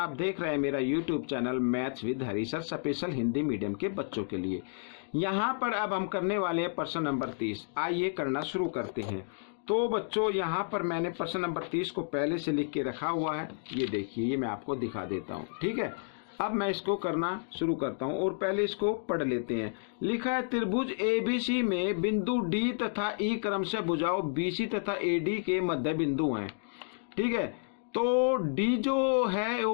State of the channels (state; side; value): silent; right; digital silence